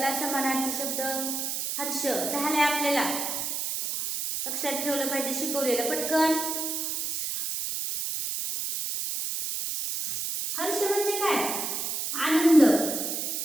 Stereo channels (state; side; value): noise; right; hiss, 2 dB below the sound